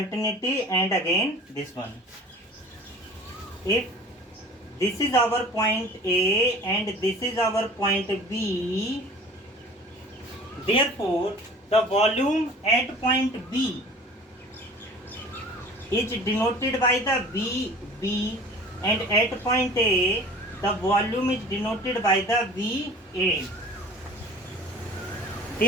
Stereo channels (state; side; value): normal; both; correlation 0.44